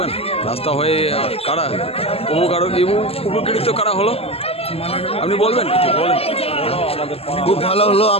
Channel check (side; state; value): right; late; 0.29 ms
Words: রাস্তা হয়ে কারা উপকৃত কারা হলো, আপনি বলবেন কিছু? বলেন। খুব ভালো হলো,